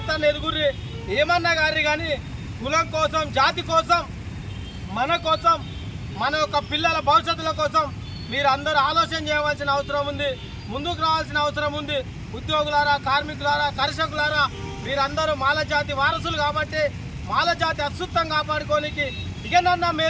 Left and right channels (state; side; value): identical; both; correlation 1.00